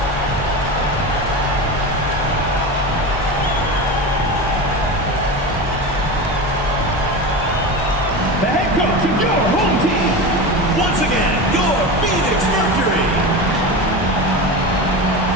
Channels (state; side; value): normal; both; correlation 0.25